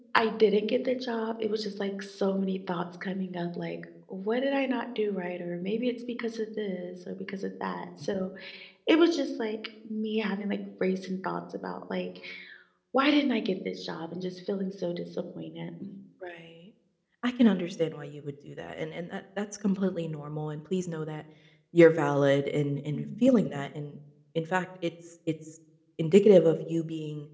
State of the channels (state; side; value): identical; both; correlation 1.00